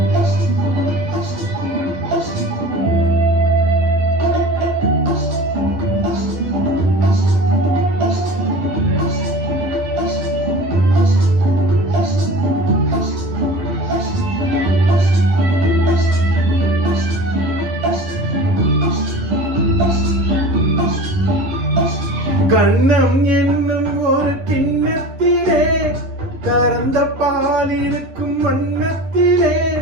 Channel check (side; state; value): left; late; 11 ms